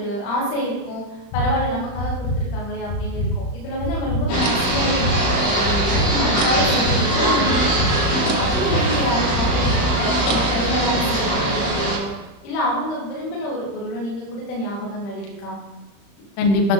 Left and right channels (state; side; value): late; right; 35 ms